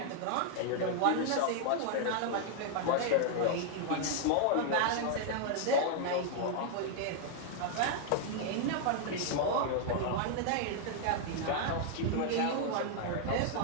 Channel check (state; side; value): different; both; correlation 0.00